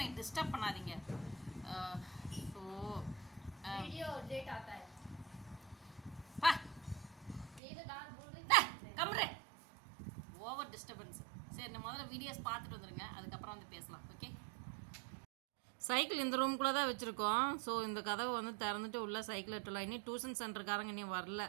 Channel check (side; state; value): left; drops out; at 7.6 s